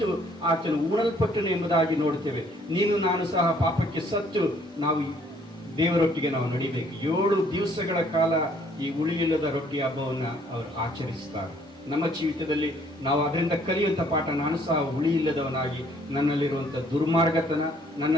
ಆತನು ಉಣಲ್ಪಟ್ಟನು ಎಂಬುದಾಗಿ ನೋಡ್ತೇವೆ. ನೀನು ನಾನು ಸಹ ಪಾಪಕ್ಕೆ ಸತ್ತು ನಾವು ದೇವರೊಟ್ಟಿಗೆ ನಾವು ನಡಿಬೇಕು. 7 ದಿವಸಗಳ ಕಾಲ ಈ ಹುಳಿಯಿಲ್ಲದ ರೊಟ್ಟಿ ಹಬ್ಬವನ್ನ ಅವರು ಆಚರಿಸ್ತಾರೆ. ನಮ್ಮ ಜೀವಿತದಲ್ಲಿ ನಾವು ಅದರಿಂದ ಕಲಿಯುವಂಥ ಪಾಠ, ನಾನು ಸಹ ಹುಳಿ ಇಲ್ಲದವನಾಗಿ ನನ್ನಲ್ಲಿರುವಂಥ ದುರ್ಮಾರ್ಗತನ,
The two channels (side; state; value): both; normal; correlation 0.62